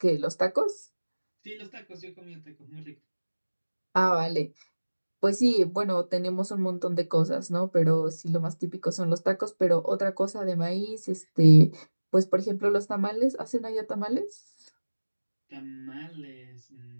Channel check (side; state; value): both; inverted; correlation -1.00